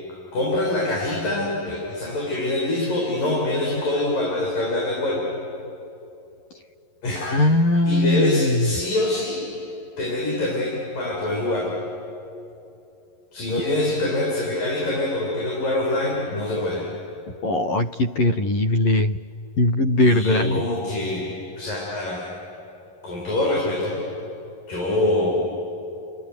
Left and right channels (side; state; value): right; late; 11 ms